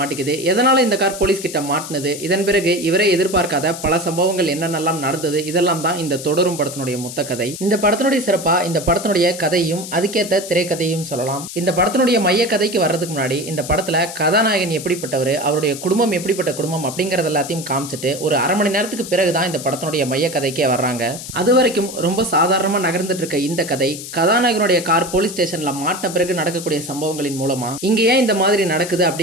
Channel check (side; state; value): left; noise; hiss, 11 dB below the sound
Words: மாட்டிக்குது. எதனால இந்த கார் போலீஸ் கிட்ட மாட்டினது, இதன் பிறகு இவரே எதிர்பார்க்காத பல சம்பவங்கள் என்னென்னலாம் நடந்தது, இதெல்லாம் தான் இந்த தொடரும் படத்தினுடைய மொத்த கதை. இந்த படத்தினுடைய சிறப்பா இந்த படத்தினுடைய கதையும் அதுக்கேற்ற திரைக்கதையும் சொல்லலாம். இந்த படத்தினுடைய மைய கதைக்கு வர்றதுக்கு முன்னாடி இந்த படத்துல கதாநாயகன் எப்படிப்பட்டவர், அவருடைய குடும்பம் எப்படிப்பட்ட குடும்பம் அப்படிங்கறது எல்லாத்தையும் காமிச்சிட்டு ஒரு அரை மணி நேரத்துக்கு பிறகுதான் இந்த படத்தினுடைய மைய கதைக்கே வர்றாங்க. அது வரைக்கும் ரொம்ப சாதாரணமா நகர்ந்துட்டு இருக்க இந்த கதை கதாநாயகனுடைய கார் போலீஸ் ஸ்டேஷன்ல மாட்டின பிறகு நடக்கக்கூடிய சம்பவங்களின் மூலமா இங்க ஏன் இந்த மாதிரி நடக்குது